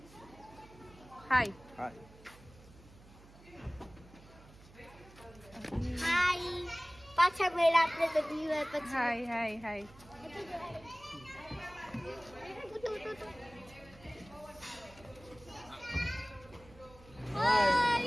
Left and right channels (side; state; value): right; noise; hum, 22 dB below the sound